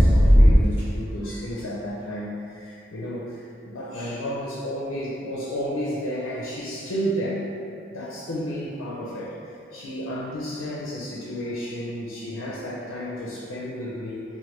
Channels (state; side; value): normal; both; correlation 0.85